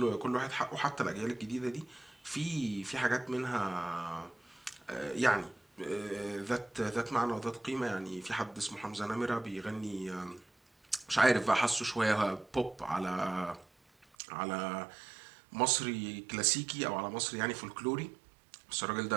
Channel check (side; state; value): left; drops out; at 14.1 s